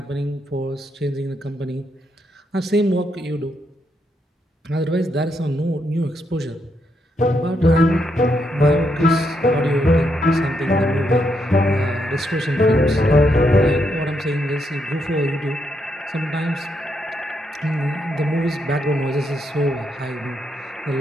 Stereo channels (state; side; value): normal; both; correlation 0.79